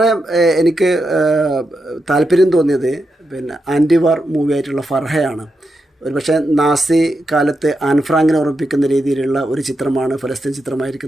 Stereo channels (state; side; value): normal; both; correlation 0.86